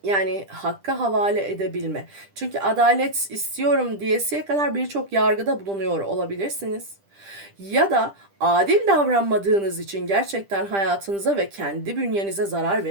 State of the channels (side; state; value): left; late; 10 ms